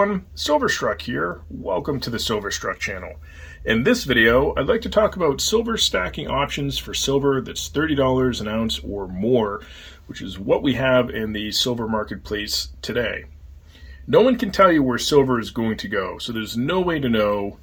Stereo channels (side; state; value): both; identical; correlation 1.00